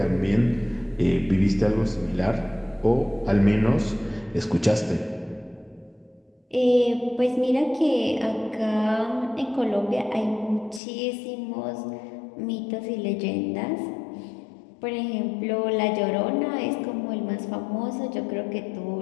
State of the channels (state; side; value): drops out; right; at 10.8 s